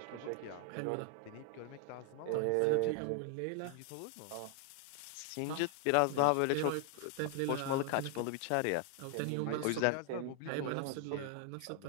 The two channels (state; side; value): different; both; correlation 0.00